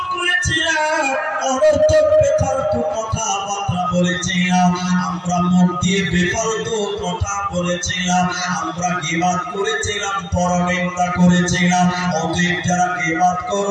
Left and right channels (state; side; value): identical; both; correlation 1.00